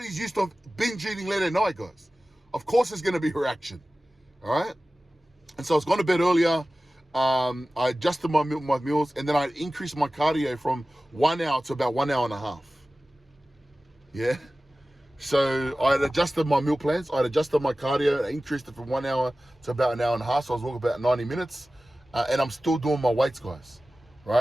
used to binge eating late at night, guys. Of course there's going to be a reaction, all right? And so I was going to bed earlier. I adjusted my meals, and then I increased my cardio from 1 hour to about 1 hour and a half. Yeah? So I had adjusted my meal plans. I had adjusted my cardio. I increased it from 1 hour to about an hour and a half. So I was walking about 90 minutes. And I'm still doing my weights, guys.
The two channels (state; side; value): normal; both; correlation 0.96